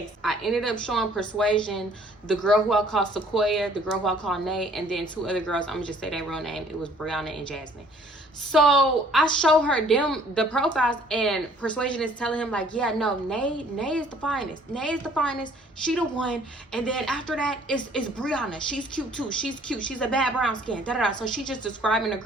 I ended up showing Persuasion, the girl who I call Sequoia, the girl who I call Nate, and then two other girls. I'm gonna just say their real name. It was Brianna and Jasmine. So I show her the profiles, and Persuasion is telling him like, yeah, no, Nay is the finest. Nay is the finest. She the one. And then after that is Brianna. She's cute too. She's cute. She's a bad brown skin. Da da da. So she just describing the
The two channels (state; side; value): normal; both; correlation 0.57